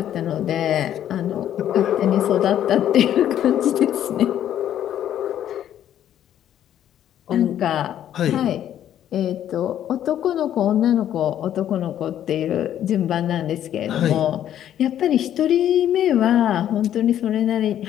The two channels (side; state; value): right; quieter; 10.9 dB